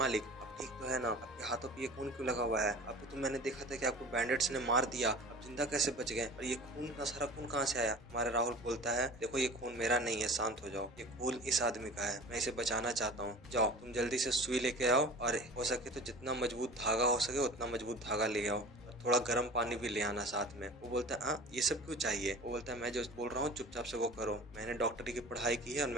आप ठीक तो है ना? आपके हाथों पे ये खून क्यों लगा हुआ है? आपको तो मैंने देखा था कि आपको बैंडेट्स ने मार दिया, आप जिंदा कैसे बच गए? और ये खून का सारा खून कहाँ से आया? हमारा राहुल बोलता है देखो ये खून मेरा नहीं है, शांत हो जाओ। ये खून इस आदमी का है, मैं इसे बचाना चाहता हूँ। जाओ तुम जल्दी से सुई लेके आओ, और हो सके तो जितना मजबूत धागा हो सके उतना मजबूत धागा ले आओ, और थोड़ा गर्म पानी भी ले आना साथ में। वो बोलता है हाँ ये सब क्यों चाहिए? वो बोलता है मैं जो बोल रहा हूँ चुपचाप से वो करो। मैंने डॉक्टरी की पढ़ाई की है और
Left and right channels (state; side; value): normal; both; correlation 0.39